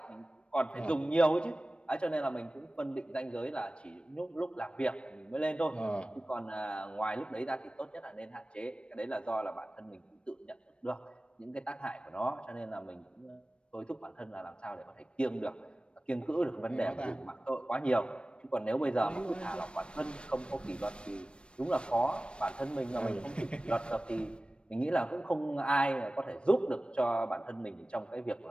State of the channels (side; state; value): right; late; 0.057 ms